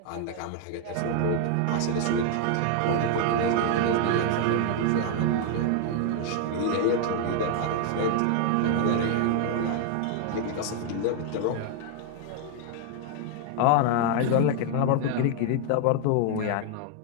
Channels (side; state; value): both; different; correlation 0.00